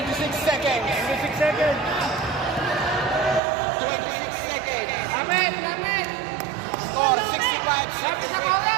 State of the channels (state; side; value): drops out; left; at 3.4 s